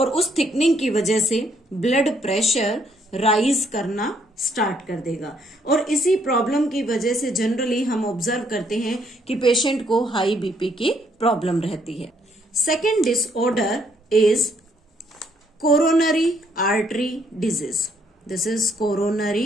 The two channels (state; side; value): normal; both; correlation 0.69